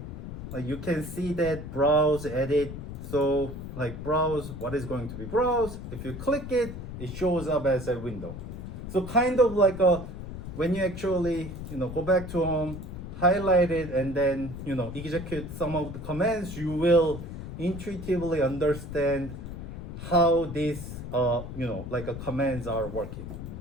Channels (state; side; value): noise; left; rumble, 9 dB below the sound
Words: Like you can see that browse, edit. So like browse, what is going to be browse? If you click it, it shows up as a window. So kind of like when you actually go back to home, highlight it, and then execute some of the commands, you will intuitively understand how these commands are working.